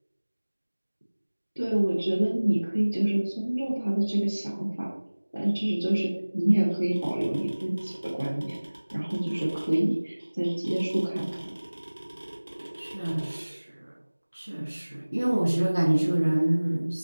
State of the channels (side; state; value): both; inverted; correlation -1.00